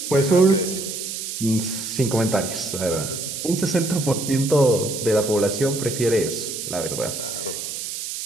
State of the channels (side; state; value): right; noise; hiss, 6 dB below the sound